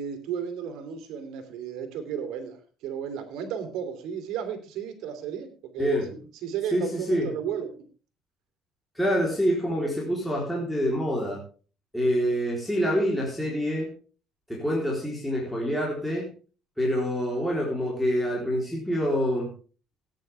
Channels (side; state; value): both; normal; correlation 0.72